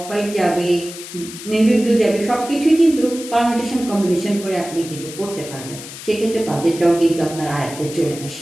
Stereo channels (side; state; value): left; noise; hiss, 13 dB below the sound